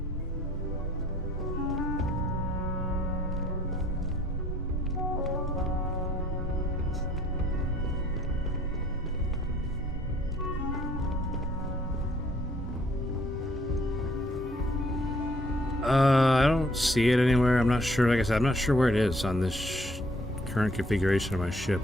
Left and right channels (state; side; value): normal; both; correlation 0.62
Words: I don't see it anywhere. I'm not sure. Like I said, I'm not sure where it is on this current configuration of my ship.